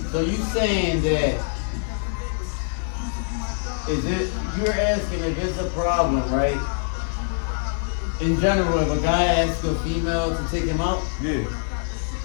So you saying that is it? You're asking if it's a problem, right? In general, if a guy asks a female to take him out, bro? Yeah.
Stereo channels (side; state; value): right; silent; 57 dB below the other